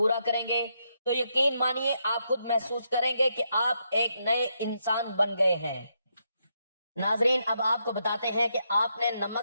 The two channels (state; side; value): inverted; both; correlation -0.80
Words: کریں گے تو یقین مانیے آپ خود محسوس کریں گے کہ آپ ایک نئے انسان بن گئے ہیں۔ ناظرین، اب آپ کو بتاتے ہیں کہ آپ نے